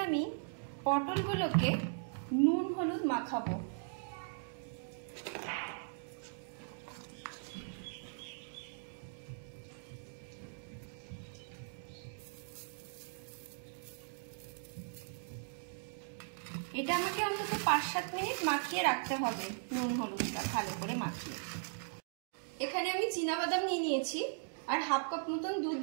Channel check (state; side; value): silent; left; digital silence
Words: আমি পটলগুলোকে নুন হলুদ মাখাবো। এটা আমাকে অন্তত 5-7 মিনিট মাখিয়ে রাখতে হবে, নুন হলুদটা ভালো করে মাখিয়ে। এখানে আমি চীনাবাদাম নিয়ে নিয়েছি আর হাফ কাপ মতন দুধ